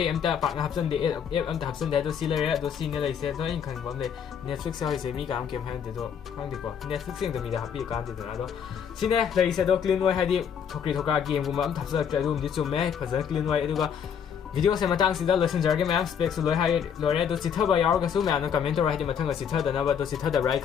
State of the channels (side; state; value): right; quieter; 7.8 dB